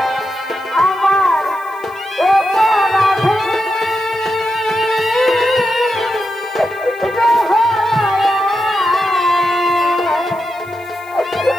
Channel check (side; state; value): left; noise; hiss, 27 dB below the sound